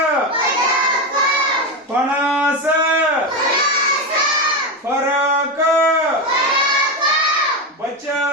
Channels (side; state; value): both; normal; correlation 0.14